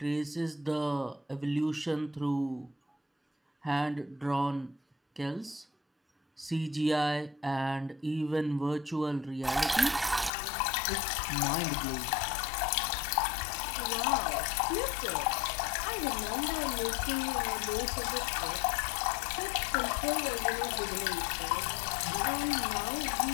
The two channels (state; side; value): drops out; right; at 10.3 s